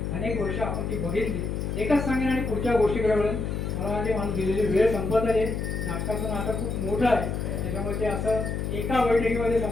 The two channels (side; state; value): left; noise; hum, 2 dB below the sound